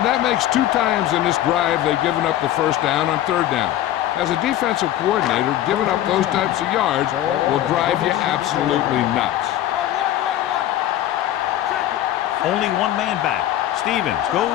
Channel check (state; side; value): quieter; right; 13.0 dB